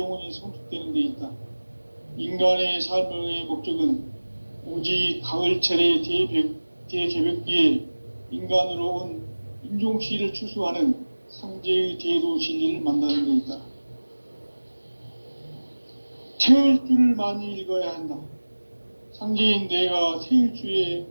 성숙되는 데 있다. 인간의 삶의 목적은 오직 가을철의 대개벽기에 인간으로 온 인종씨를 추수하는 상제의 대도 진리를 만나는 데 있다. 태울 줄을 많이 읽어야 한다. 상제인 내가 태일주의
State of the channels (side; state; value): both; inverted; correlation -1.00